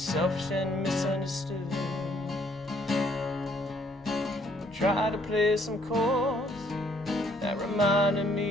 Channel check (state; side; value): normal; both; correlation 0.66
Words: and misunderstood. Tried to play some chords that reminded